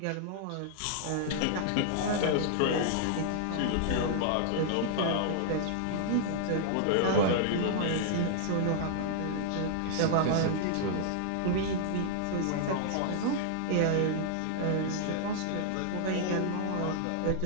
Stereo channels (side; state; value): both; different; correlation -0.01